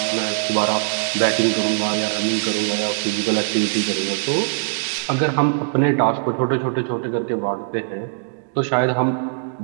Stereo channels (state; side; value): silent; left; digital silence